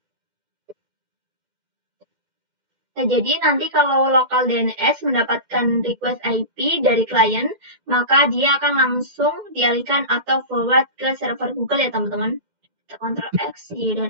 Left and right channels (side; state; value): left; late; 12 ms